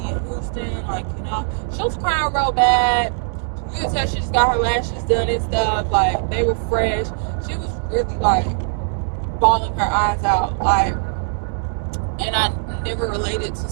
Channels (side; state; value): left; silent; 65 dB below the other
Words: in Houston, like, she was crying real bad. You could tell she just got her lashes done and stuff, like they were fresh. She was really like bawling her eyes out, like, and I never related to